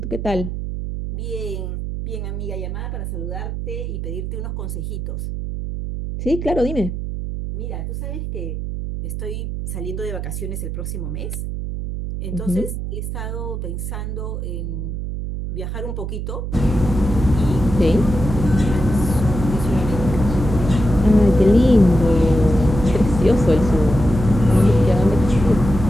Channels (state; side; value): noise; right; hum, 5 dB below the sound